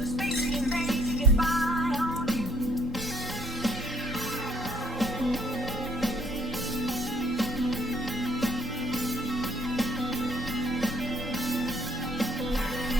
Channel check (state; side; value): normal; both; correlation 0.65